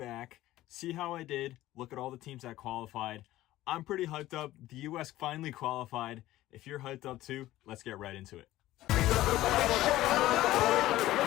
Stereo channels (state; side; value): quieter; right; 15.6 dB